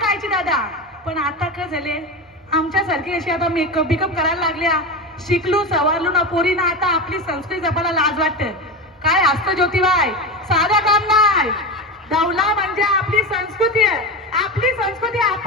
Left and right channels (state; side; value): normal; both; correlation 0.21